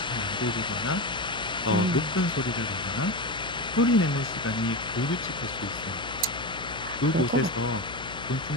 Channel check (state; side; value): noise; left; hum, 13 dB below the sound